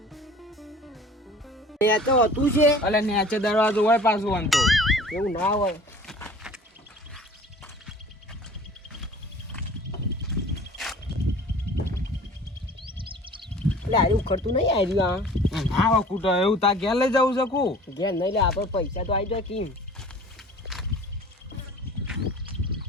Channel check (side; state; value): both; normal; correlation 0.46